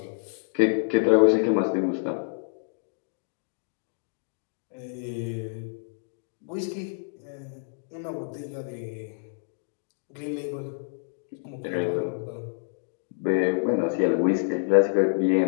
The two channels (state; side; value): silent; right; digital silence